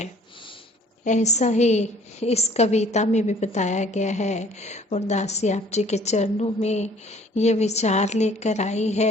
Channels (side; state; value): both; normal; correlation 0.55